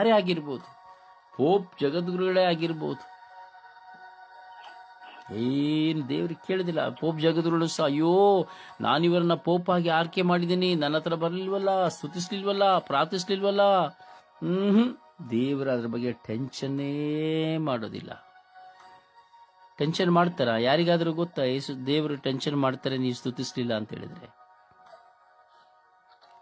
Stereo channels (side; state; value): both; identical; correlation 1.00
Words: ಆಗಿರ್ಬೋದು, ಪೋಪ್ ಜಗದ್ಗುರುಗಳೇ ಆಗಿರ್ಬೋದು, ಏನು ದೇವ್ರಿಗೆ ಕೇಳಿದಿಲ್ಲ. ಪೋಪ್ ಜಗದ್ಗುರುಗಳು ಸಹ, ಅಯ್ಯೋ ನಾನಿವರನ್ನ ಪೋಪ್ ಆಗಿ ಆರ್ಕೆ ಮಾಡಿದ್ದೀನಿ, ನನ್ನ ಹತ್ರ ಬರಲಿಲ್ವಲ್ಲ, ಸ್ತುತಿಸ್ಲಿಲ್ವಲ್ಲ, ಪ್ರಾರ್ಥಿಸ್ಲಿಲ್ವಲ್ಲ. ದೇವರ ಅದ್ರ ಬಗ್ಗೆ ಟೆನ್ಷನ್ನೇ ಮಾಡೋದಿಲ್ಲ. ಟೆನ್ಷನ್ ಮಾಡ್ತಾರ? ಯಾರಿಗಾದ್ರೂ ಗೊತ್ತಾ ದೇವರು ಟೆನ್ಷನ್ ಮಾಡ್ತಾರೆ ನೀವು ಸ್ತುತಿಸ್ಲಿಲ್ಲ ಅಂತ ಹೇಳಿದ್ರೆ?